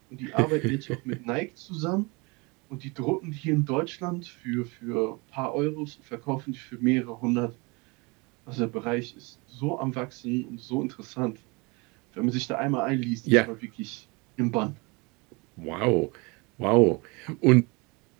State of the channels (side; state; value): left; quieter; 27.8 dB